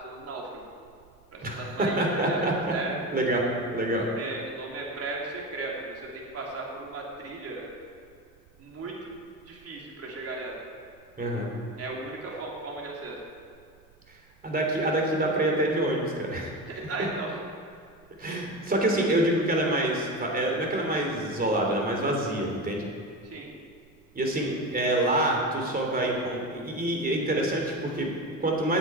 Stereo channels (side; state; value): right; noise; rumble, 29 dB below the sound